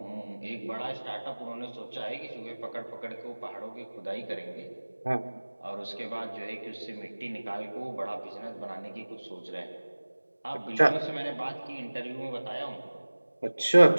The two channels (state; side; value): inverted; both; correlation -1.00